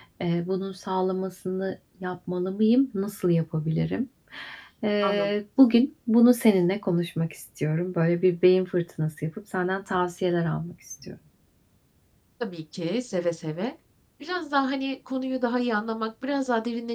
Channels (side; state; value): both; identical; correlation 1.00